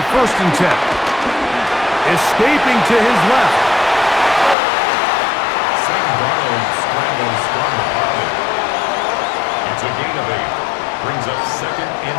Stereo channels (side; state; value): right; drops out; at 4.5 s